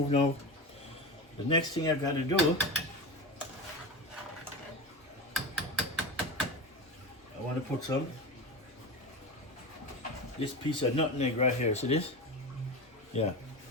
now. The next thing I gotta do, I wanna put this piece of nutmeg right here. See this? Yeah.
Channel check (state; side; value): normal; both; correlation 0.24